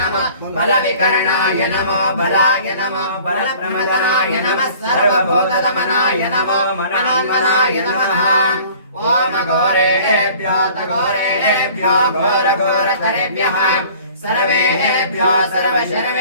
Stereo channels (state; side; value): inverted; both; correlation -0.49